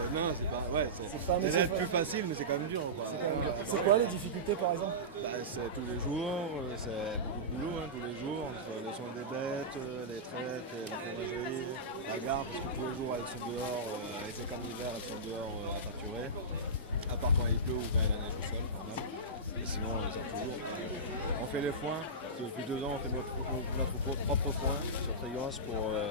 pas. Ouais, pas un c'est métier plus facile, mais c'est quand même dur. Quoi. c'est quoi les difficultés par exemple? C'est tous les jours, c'est beaucoup de boulot, hein, tous les jours, entre les soins des bêtes, les traites, la fromagerie, la gare, parce que tous les jours elles sont dehors, été comme l'hiver, elles sont dehors à pâturer, à part quand il pleut ou quand il y a la neige au sol, normal. Et sinon on les sort toujours. On fait les foins, depuis 2 ans on fait notre propre foin sur Trigance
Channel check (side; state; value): both; normal; correlation -0.18